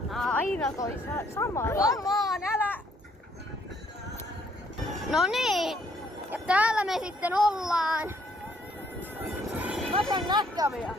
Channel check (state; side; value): normal; both; correlation 0.67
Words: Aina toi sama. Come on, älä! No niin, ja täällä me sitten ollaan. Mä saan näkkäviä.